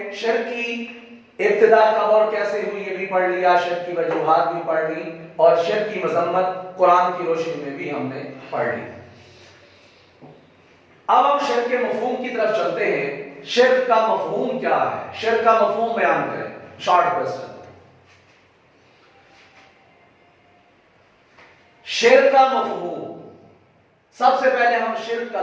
شرک کی ابتدا کب اور کیسے ہوئی یہ بھی پڑھ لیا, شرک کی وجوہات بھی پڑھ لی, اور شرک کی مذمت قرآن کی روشنی میں بھی ہم نے پڑھ لی. اب ہم شرک کے مفہوم کی طرف چلتے ہیں. شرک کا مفہوم کیا ہے؟ شرک کا مفہوم بیان کریں. Short question. شرک کا مفہوم. سب سے پہلے ہم شرک کا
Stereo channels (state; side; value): identical; both; correlation 1.00